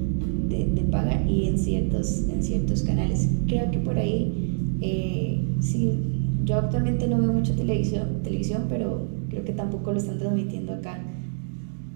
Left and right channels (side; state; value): left; silent; 61 dB below the other